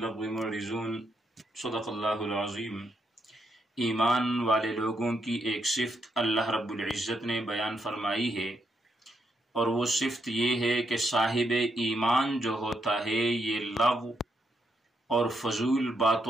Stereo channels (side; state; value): both; normal; correlation 0.79